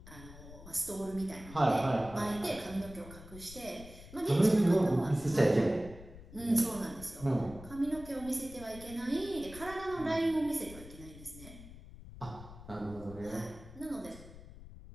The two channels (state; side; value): noise; left; rumble, 16 dB below the sound